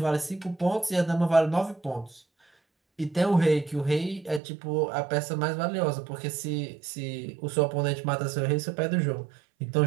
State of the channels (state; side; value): drops out; left; at 4.4 s